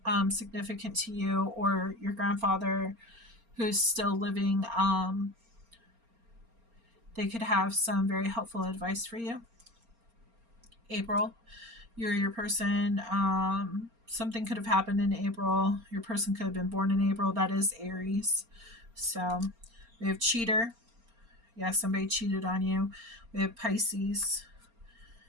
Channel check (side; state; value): left; late; 4.3 ms